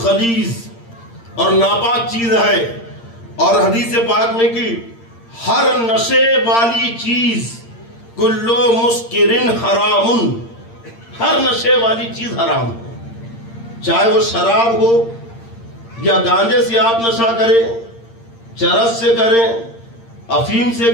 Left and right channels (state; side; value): late; right; 8.7 ms